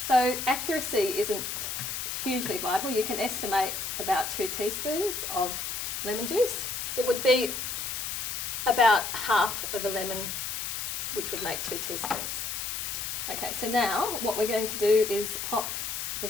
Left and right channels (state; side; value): noise; left; hiss, 3 dB below the sound